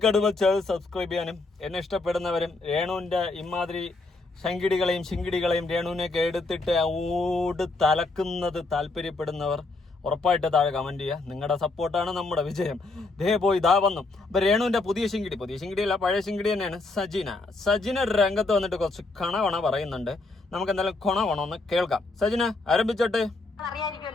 വെച്ചാൽ സബ്സ്ക്രൈബ് ചെയ്യാനും എന്നെ ഇഷ്ടപ്പെടുന്നവരും രേണുവിൻ്റെ ഇമാതിരി ശങ്കിടികളെയും രേണുവിനെയൊക്കെ എടുത്തിട്ട് ഓട് തലക്കുന്നത് താല്പര്യപ്പെടുന്നവർ ഉറപ്പായിട്ട് താഴെ കമന്റ് ചെയ്യുക. നിങ്ങളുടെ സപ്പോർട്ടാണ് നമ്മുടെ വിജയം. ഇതാ വന്നു. അപ്പൊ രേണുവിന്റെ പുതിയ ശിങ്കിടിയല്ല, പഴയ ശിങ്കിടി തന്നെയാണ്. സജിന രംഗത്ത് വന്നിട്ട് കുറച്ച് കണവണ പറയുന്നുണ്ട്. നമുക്ക് എന്തായാലും കൊണവണമെന്ന് കേൾക്കാം. സജിന ആരംഭിച്ചോട്ടെ.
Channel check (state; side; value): quieter; right; 3.3 dB